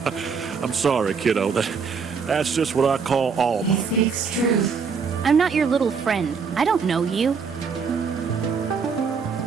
I'm sorry, kiddo. That's just what I call He Alma. speaks truth. I'm not your little friend. I don't know you.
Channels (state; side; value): quieter; left; 5.7 dB